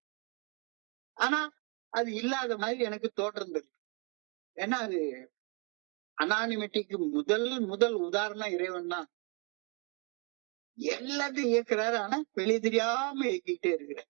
ஆனா அது இல்லாத மாதிரி எனக்கு தோற்றம் இருக்கு. ஏன்னா அது அனானிமிட்டிக்கு முதல் உதாரணம் இறைவன் தான். எல்லாத்தையும் இயக்குறாரு. ஆனா வெளியே தெரியாம இயக்கிட்டே இருக்கிறார்.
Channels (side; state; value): left; quieter; 35.1 dB